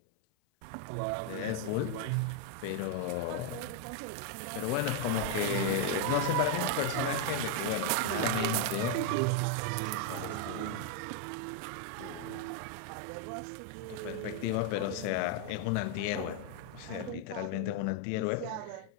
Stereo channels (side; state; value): both; different; correlation 0.01